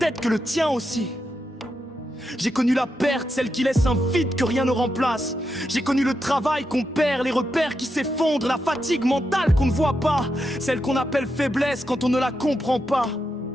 que le tien aussi. J'ai connu la perte, celle qui laisse un vide que rien ne remplace. J'ai connu le travail qu'on perd, les repères qui s'effondrent, la fatigue mentale qu'on ne voit pas, celle qu'on appelle faiblesse quand on ne la comprend pas.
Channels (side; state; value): both; normal; correlation 0.85